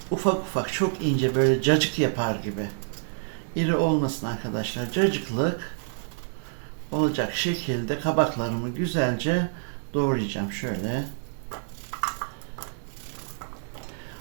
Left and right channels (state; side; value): silent; left; 60 dB below the other